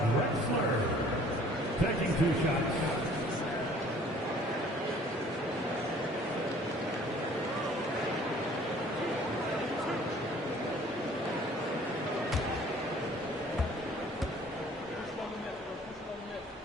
Drexler. Taking 2 shots.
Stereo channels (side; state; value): both; normal; correlation 0.54